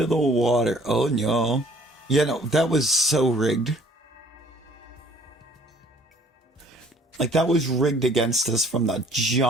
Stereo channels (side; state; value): both; normal; correlation 0.57